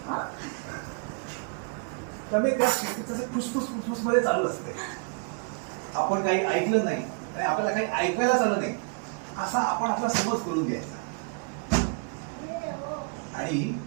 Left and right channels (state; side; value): quieter; left; 39.8 dB